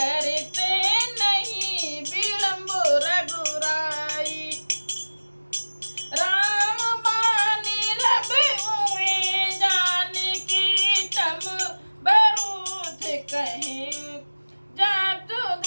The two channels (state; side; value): inverted; both; correlation -1.00